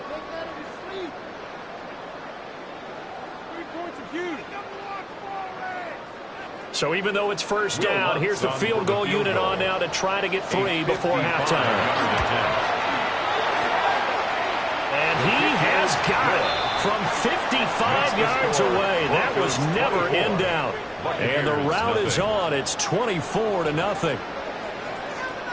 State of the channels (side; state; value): both; identical; correlation 1.00